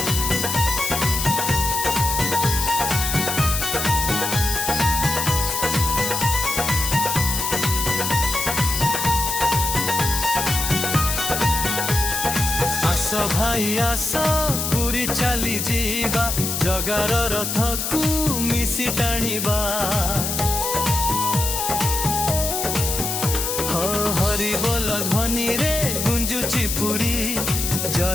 आसो भाई आसो पूरी चाली जीवा जगार रथ को मिसी टाणीबा हो हरि बोल ध्वनि रे गुंजुची पूरी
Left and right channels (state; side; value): noise; left; hiss, 2 dB below the sound